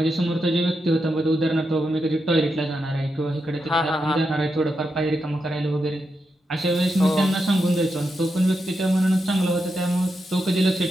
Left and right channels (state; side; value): normal; both; correlation 0.86